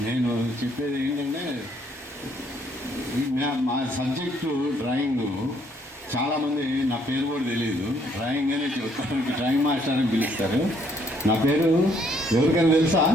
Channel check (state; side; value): normal; both; correlation 0.67